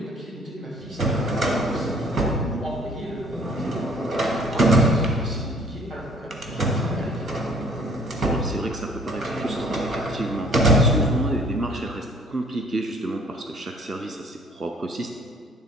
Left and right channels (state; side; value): normal; both; correlation 0.55